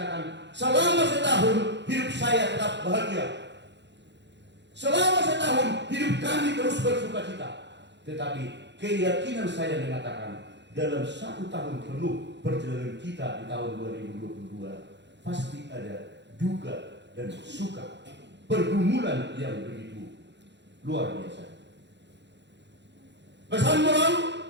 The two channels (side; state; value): left; late; 0.52 ms